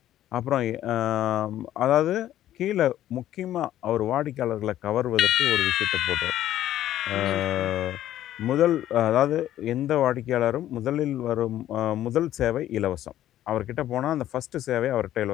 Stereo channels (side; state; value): right; quieter; 12.7 dB